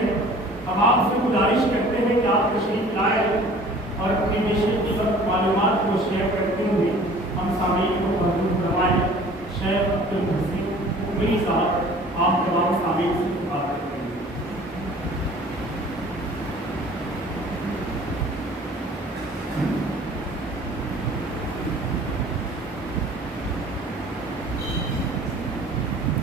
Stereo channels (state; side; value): normal; both; correlation 0.49